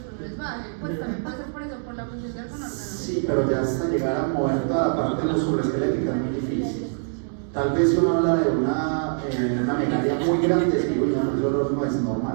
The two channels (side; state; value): left; silent; digital silence